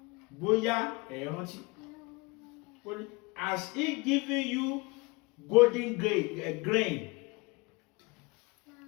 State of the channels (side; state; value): right; quieter; 25.8 dB